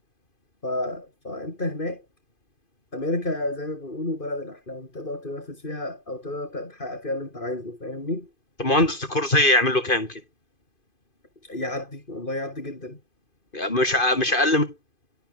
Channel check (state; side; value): late; right; 2.5 ms